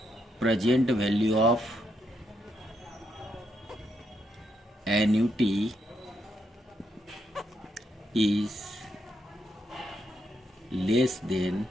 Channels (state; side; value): normal; both; correlation 0.79